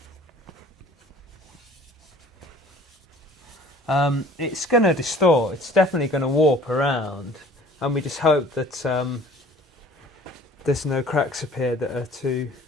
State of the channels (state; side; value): normal; both; correlation 0.50